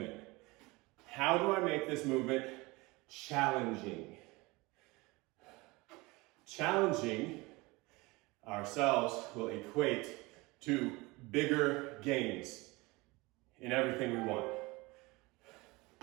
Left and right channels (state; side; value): quieter; left; 23.5 dB